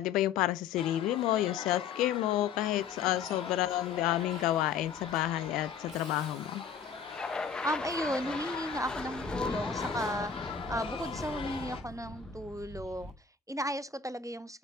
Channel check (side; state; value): right; quieter; 6.9 dB